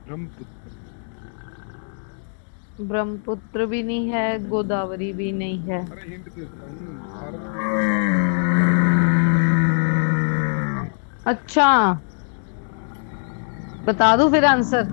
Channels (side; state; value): right; silent; digital silence